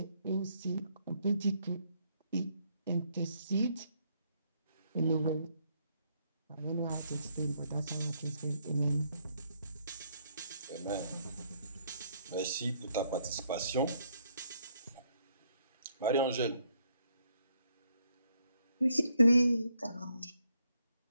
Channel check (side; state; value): both; inverted; correlation -0.72